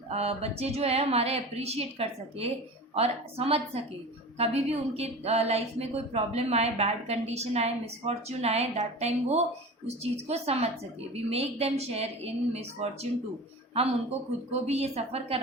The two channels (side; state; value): both; normal; correlation 0.34